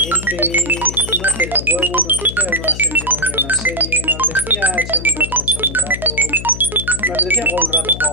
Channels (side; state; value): left; noise; hum, 9 dB below the sound